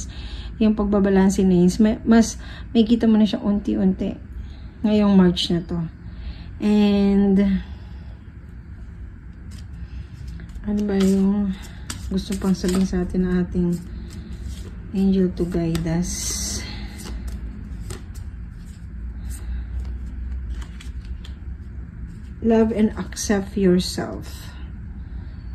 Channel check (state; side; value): identical; both; correlation 1.00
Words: yung pagbabalansin na yun, mas may kita mo na siya unti-unti ngayong March na to. And ano ba yung gusto pang sabihin sa atin na ating angel to guide us? love and accept yourself.